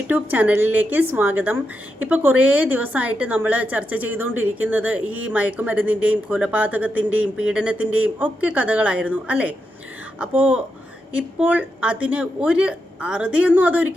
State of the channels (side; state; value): both; normal; correlation 0.85